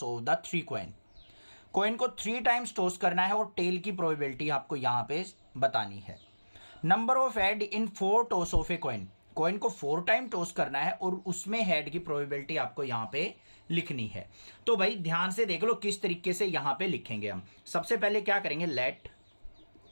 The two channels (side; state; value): both; inverted; correlation -1.00